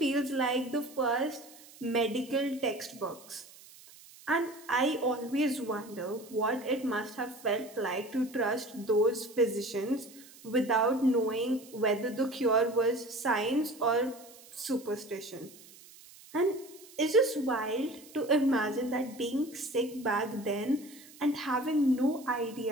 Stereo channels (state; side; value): noise; right; hiss, 21 dB below the sound